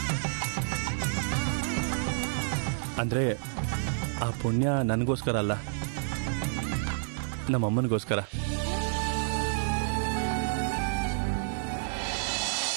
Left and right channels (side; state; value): left; silent; digital silence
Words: ಅಂದ್ರೆ ಆ ಪುಣ್ಯ ನನಗೋಸ್ಕರ ಅಲ್ಲ, ನಮ್ಮಮ್ಮನಿಗೋಸ್ಕರ.